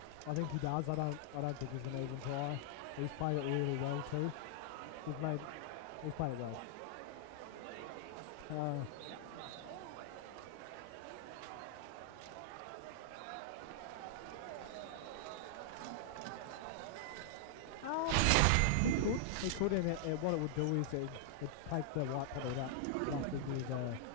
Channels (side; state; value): both; different; correlation -0.01